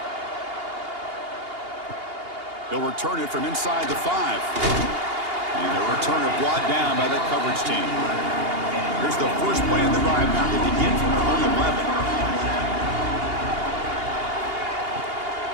He'll return it from inside the 5. And the returner brought down by the coverage team. Here's the first play of the drive now. They begin from their own 11.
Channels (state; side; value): late; left; 2.8 ms